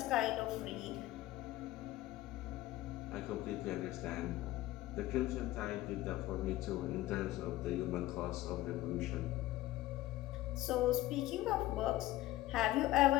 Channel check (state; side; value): quieter; right; 16.4 dB